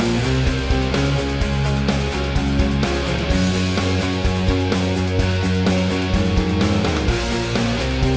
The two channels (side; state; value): both; identical; correlation 1.00